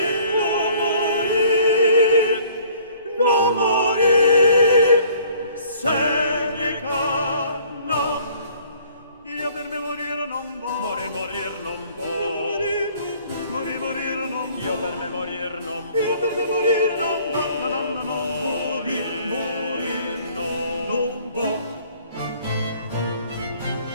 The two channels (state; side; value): inverted; both; correlation -0.56